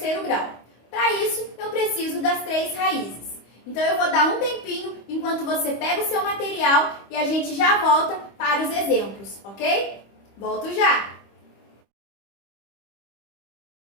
grau. Para isso, eu preciso das 3 raízes. Então, eu vou dar um tempinho enquanto você pega o seu material e a gente já volta para os exemplos, ok? Volto já!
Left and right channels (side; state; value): right; late; 25 ms